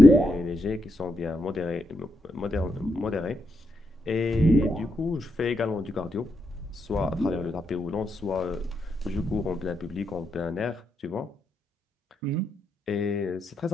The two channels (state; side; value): normal; both; correlation 0.82